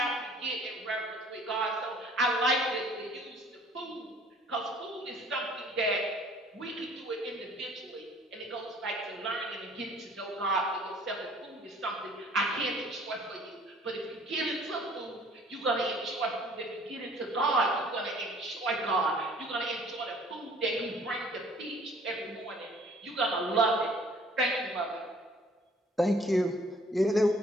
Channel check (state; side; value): normal; both; correlation 0.55